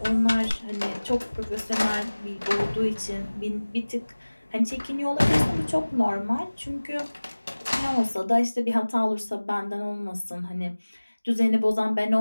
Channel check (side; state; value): both; inverted; correlation -1.00